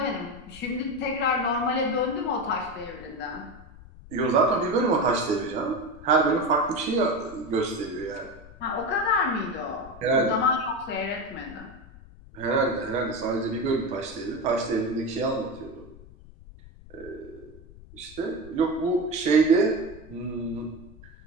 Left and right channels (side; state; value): left; noise; rumble, 19 dB below the sound